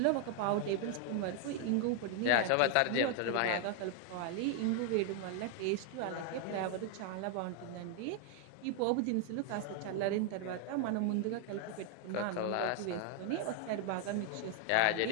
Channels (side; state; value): both; different; correlation 0.00